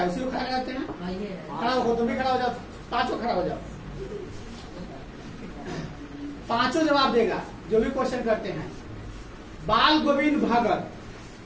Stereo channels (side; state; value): both; identical; correlation 1.00